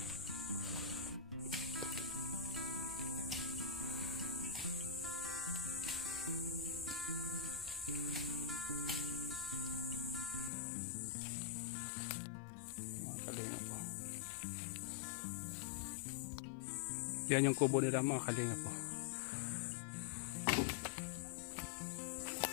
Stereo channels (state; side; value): drops out; right; at 10.5 s